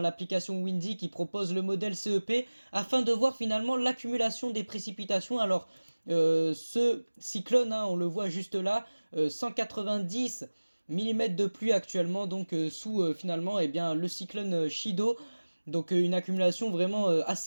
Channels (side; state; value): both; inverted; correlation -1.00